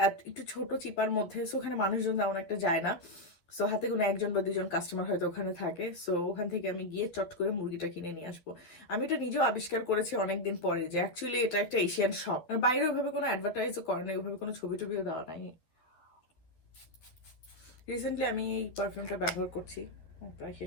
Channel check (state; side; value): late; right; 12 ms